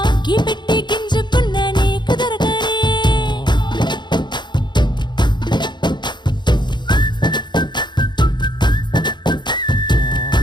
కి పెట్టి గింజుకున్న నీకు దొరకనే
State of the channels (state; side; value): late; right; 0.22 ms